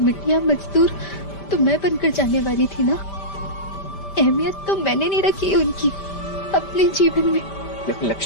मजदूर तो मैं बनकर जाने वाली थी ना, अहमियत तो मैंने नहीं रखी उनकी अपने जीवन में। लेकिन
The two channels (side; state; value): right; late; 5.1 ms